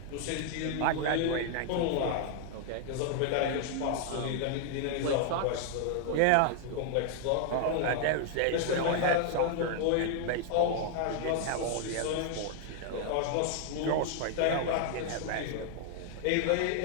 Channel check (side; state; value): both; different; correlation 0.00